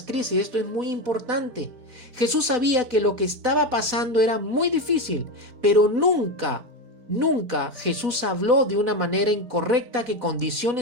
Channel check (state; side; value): late; left; 4.1 ms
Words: crisis, esto es muy importante. Jesús sabía que lo que estaba pasando era muy difícil, pero nunca Jesús habló de una manera incorrecta que